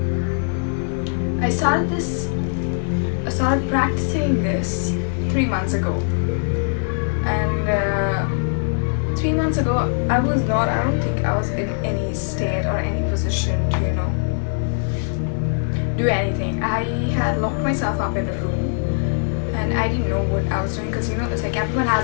I started practicing this 3 months ago, and 3 months ago I don't think I was in any state or any position to do anything. I had locked myself up in a room and I didn't know what I was doing, because it's like everyone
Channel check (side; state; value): right; silent; 65 dB below the other